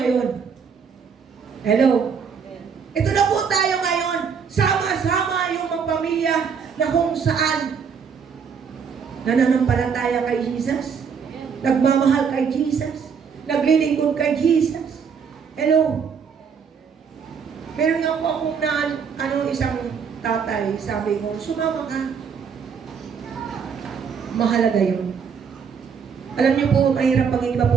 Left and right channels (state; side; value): quieter; left; 6.5 dB